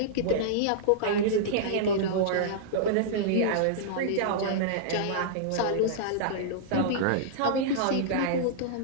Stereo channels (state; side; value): different; both; correlation -0.02